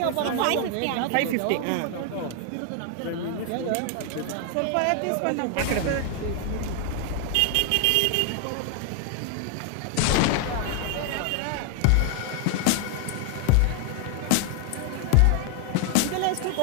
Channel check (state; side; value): different; both; correlation 0.00